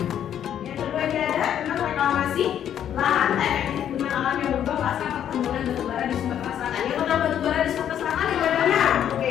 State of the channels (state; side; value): quieter; right; 9.9 dB